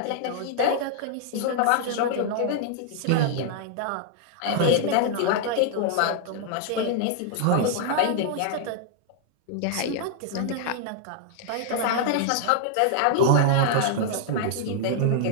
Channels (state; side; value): different; both; correlation 0.00